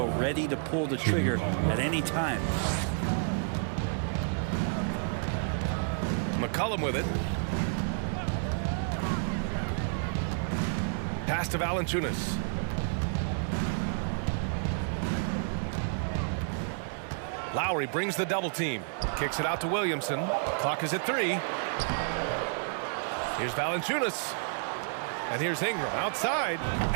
ready to pull the trigger at any time. McCollum with it. Pass to Valanciunas. Lowry brings the double team. Kicks it out to Williamson. Clock is at 3. Here's Valanciunas. And here's Ingram outside.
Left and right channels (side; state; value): left; silent; 58 dB below the other